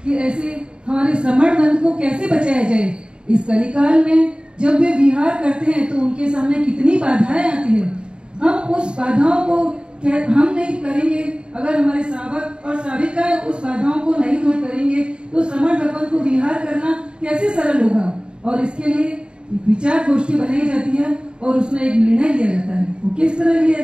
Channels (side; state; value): left; late; 0.052 ms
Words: कि ऐसे हमारे श्रमण बंध को कैसे बचाया जाए। इस कलिकाल में जब वे विहार करते हैं तो उनके सामने कितनी बाधाएं आती है। हम उस बाधाओं को हम नहीं करेंगे, अगर हमारे श्रावक और श्राविका उस बाधाओं को नहीं दूर करेंगे तो श्रमण भगवंत को विहार करना कैसे सरल होगा। और इसके लिए विचार गोष्ठी बनाई जाती है और उसमें एक निर्णय लिया जाता है। वो किस तरह